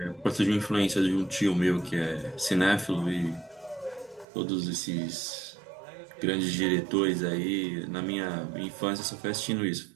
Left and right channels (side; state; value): left; drops out; at 4.2 s